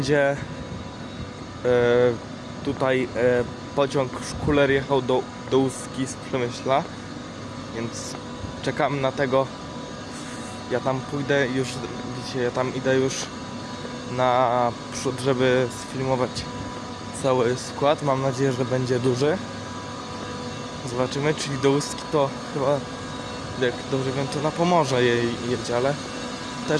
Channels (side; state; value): both; identical; correlation 1.00